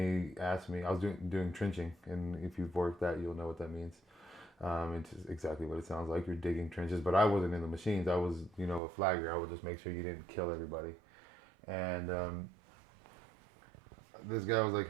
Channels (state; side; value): drops out; left; at 8.8 s